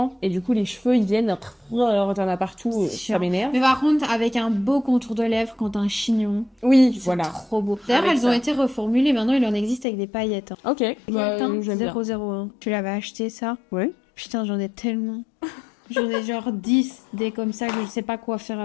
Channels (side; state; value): right; drops out; at 9.9 s